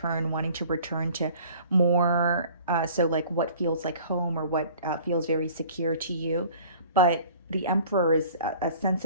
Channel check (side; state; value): both; inverted; correlation -0.49